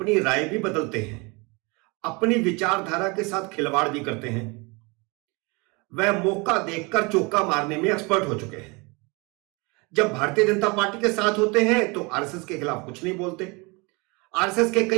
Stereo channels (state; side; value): quieter; left; 27.9 dB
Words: राय भी बदलते हैं, अपनी विचारधारा के साथ खिलवाड़ भी करते हैं। वह मौका देखकर चौका मारने में एक्सपर्ट हो चुके हैं। जब भारतीय जनता पार्टी के साथ होते हैं तो आरएसएस के खिलाफ कुछ नहीं बोलते, आरएसएस के